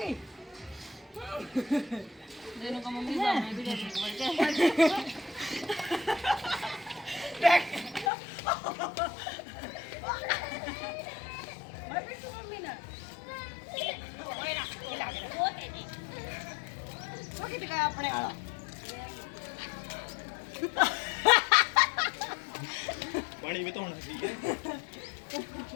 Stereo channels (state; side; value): drops out; right; at 8.1 s